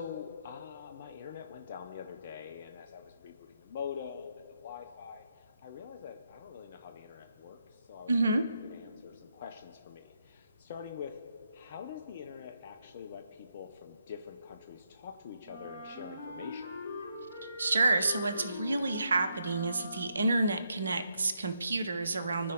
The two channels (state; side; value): inverted; both; correlation -0.79